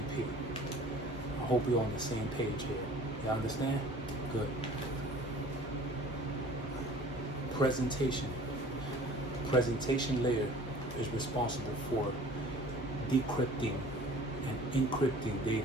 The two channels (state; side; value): normal; both; correlation 0.47